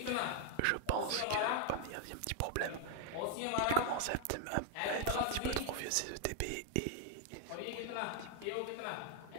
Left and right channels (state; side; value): different; both; correlation 0.00